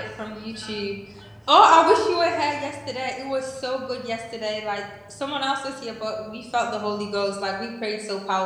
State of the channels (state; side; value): identical; both; correlation 1.00